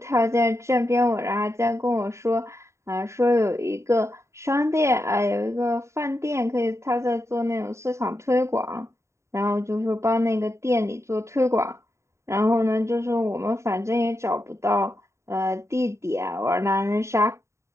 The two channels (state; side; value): late; left; 0.14 ms